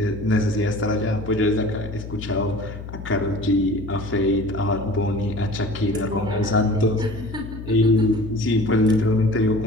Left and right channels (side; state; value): left; noise; hum, 11 dB below the sound